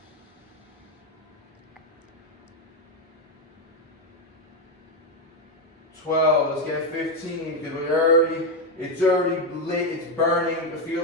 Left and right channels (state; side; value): normal; both; correlation 0.07